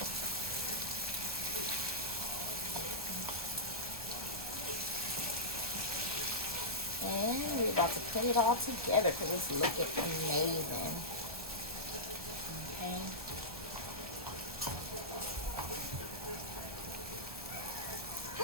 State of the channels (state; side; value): late; left; 1.2 ms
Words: And we're about to put it all together because it's looking amazing. Okay.